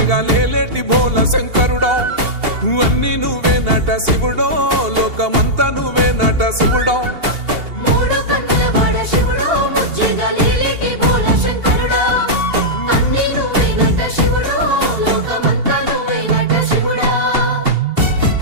లేలేటి బోల శంకరుడో అన్ని నువ్వే నట శివుడో లోకమంతా నువ్వే నట శివుడో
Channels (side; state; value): left; late; 2.8 ms